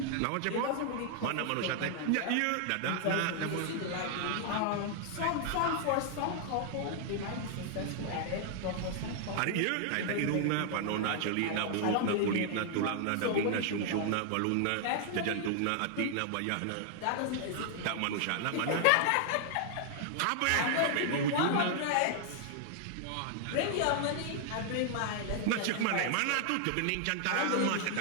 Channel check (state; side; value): different; both; correlation 0.00